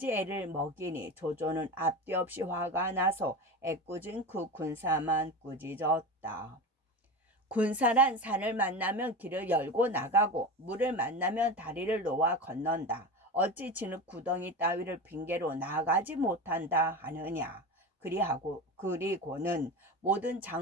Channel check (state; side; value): normal; both; correlation 0.26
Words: 애를 먹이니 조조는 앞뒤 없이 화가 나서 애꿎은 그 군사만 꾸짖었다. 군사란 산을 만나면 길을 열고 나가고 물을 만나면 다리를 놓아 건넌다. 어찌 진흙 구덩이 따위를 핑계로 나가지 못한다 하느냐. 그리고는 모든